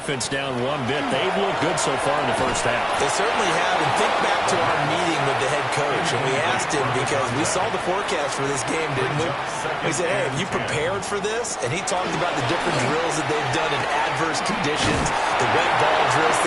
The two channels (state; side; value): identical; both; correlation 1.00